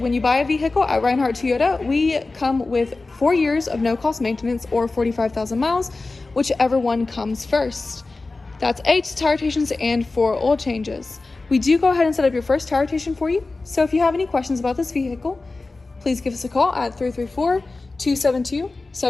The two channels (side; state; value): right; quieter; 3.5 dB